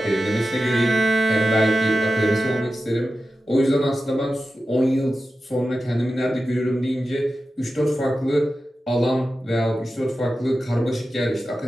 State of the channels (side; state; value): both; normal; correlation 0.93